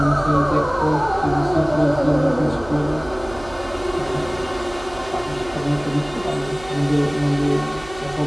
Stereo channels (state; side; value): noise; right; hum, 17 dB below the sound